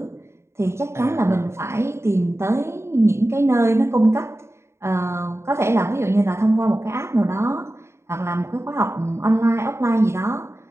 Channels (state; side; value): late; left; 0.13 ms